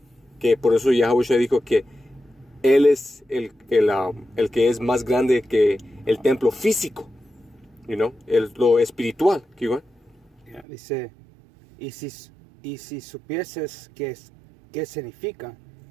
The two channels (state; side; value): drops out; left; at 10.7 s